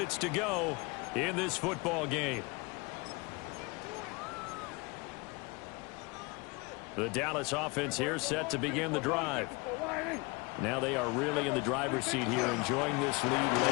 to go in this football game. The Dallas offense here set to begin the drive. Now they are really in the driver's seat here, enjoying this lead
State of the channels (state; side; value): quieter; right; 27.0 dB